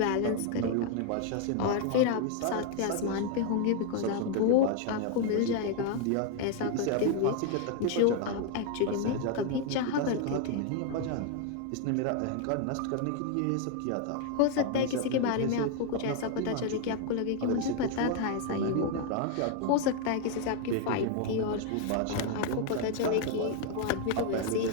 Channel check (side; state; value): both; different; correlation 0.01